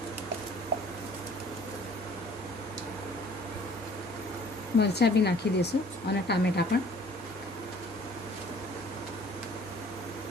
મરચાં બી નાખી દઈશું અને ટામેટાં પણ.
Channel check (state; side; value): normal; both; correlation 0.53